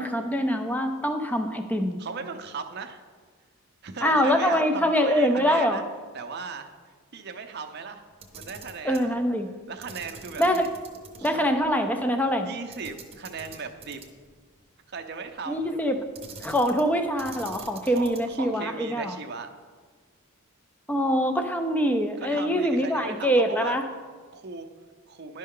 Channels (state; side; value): normal; both; correlation 0.59